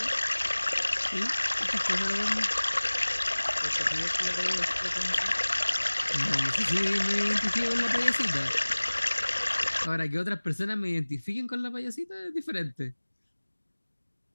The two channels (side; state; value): both; inverted; correlation -1.00